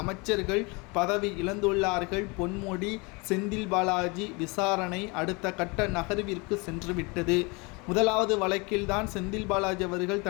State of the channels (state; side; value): quieter; right; 28.2 dB